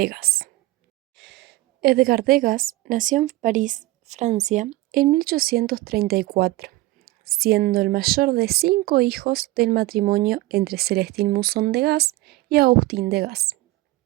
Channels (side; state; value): left; quieter; 18.8 dB